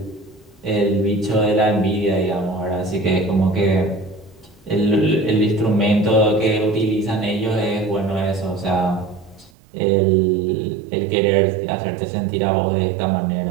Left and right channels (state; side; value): drops out; left; at 9.5 s